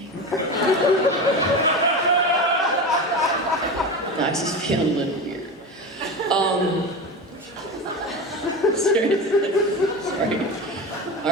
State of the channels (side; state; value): both; normal; correlation 0.24